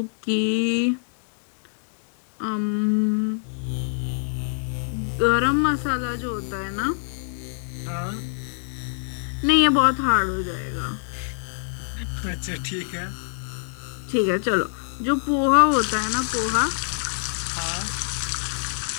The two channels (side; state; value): right; silent; digital silence